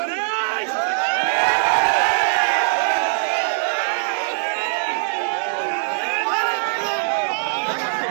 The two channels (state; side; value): silent; left; 55 dB below the other